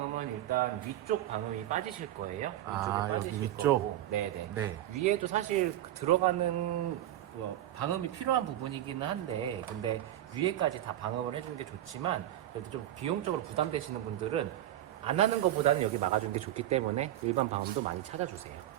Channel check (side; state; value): left; quieter; 13.0 dB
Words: 일단 위쪽 방음이 빠지실 거예요. 위쪽에 아, 여기 빠지실 위쪽? 거고. 네네. 네. 위에도 사실 들어가는 방음이 필요한 부분이기는 한데, 근데 위에까지 다 방음을 해주는 게 좋지만, 그래도 좀 비용적으로 부담되시는 분들은 안 하는 것보다는 여기 막아주는 게 좋기 때문에 일반 방음도 많이 찾아주세요.